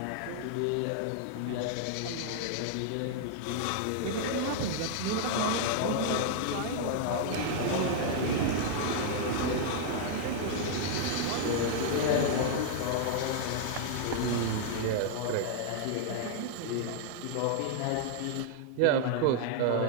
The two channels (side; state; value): both; different; correlation -0.01